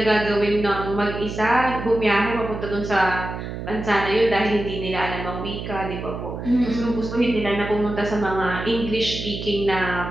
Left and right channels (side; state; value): right; noise; hum, 7 dB below the sound